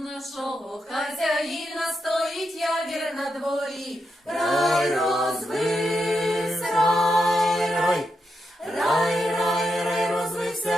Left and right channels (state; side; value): normal; both; correlation 0.85